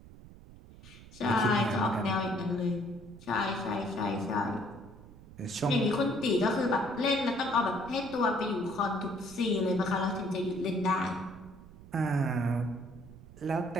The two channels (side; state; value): right; noise; rumble, 19 dB below the sound